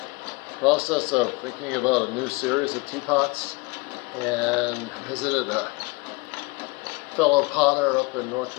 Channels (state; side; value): quieter; right; 26.1 dB